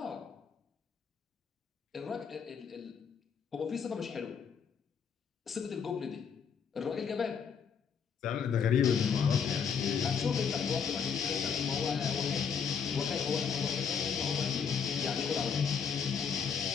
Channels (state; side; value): quieter; right; 6.6 dB